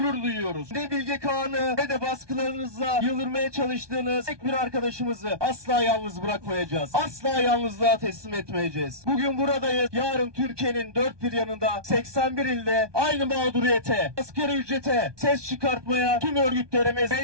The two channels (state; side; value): late; left; 1.2 ms